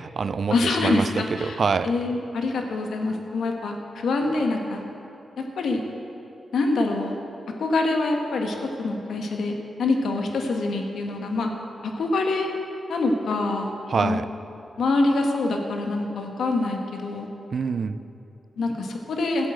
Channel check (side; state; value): both; normal; correlation 0.84